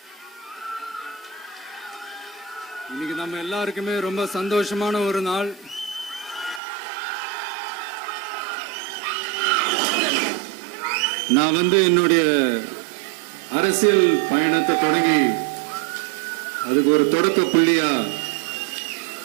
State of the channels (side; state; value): left; drops out; at 6.6 s